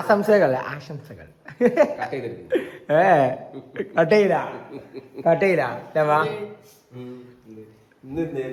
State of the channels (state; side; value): identical; both; correlation 1.00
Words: ആശംസകൾ കട്ടയില്ല ഇന്ന്